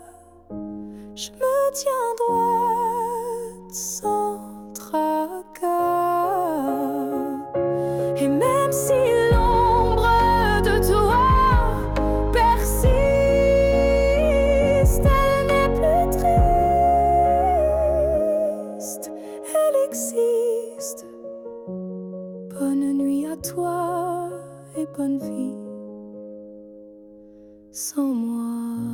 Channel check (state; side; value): identical; both; correlation 1.00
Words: je me tiens droite sans tracas. Et même si bonne nuit à toi et bonne vie sans moi.